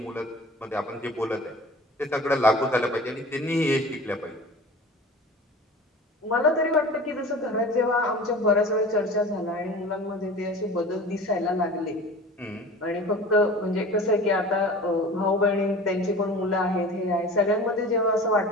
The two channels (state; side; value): normal; both; correlation 0.39